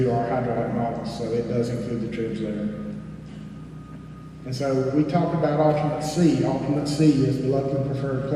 our hydraulic models. So it does include the tribs there. And so we talked about alternate C. Alternate C is the locally preferred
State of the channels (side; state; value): both; identical; correlation 1.00